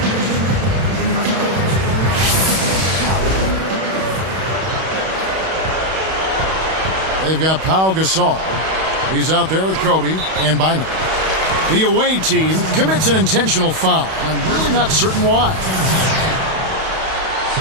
They've got Pau Gasol. He's out there with Kobe and Bynum. The away team commits an intentional foul, and I'm really not certain why.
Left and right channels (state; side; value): late; left; 31 ms